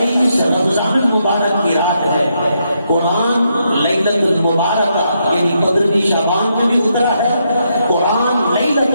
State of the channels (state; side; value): inverted; both; correlation -0.79